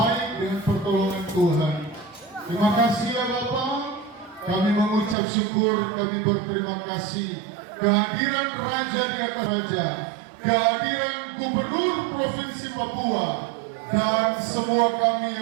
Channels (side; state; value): left; drops out; at 5.2 s